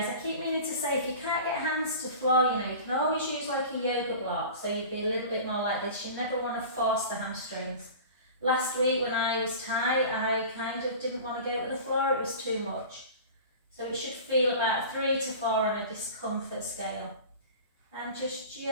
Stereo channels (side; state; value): both; inverted; correlation -0.37